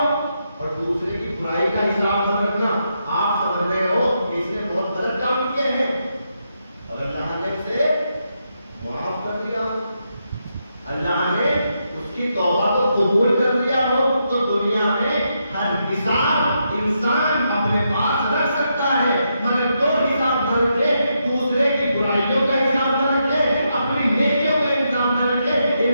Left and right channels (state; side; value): inverted; both; correlation -0.82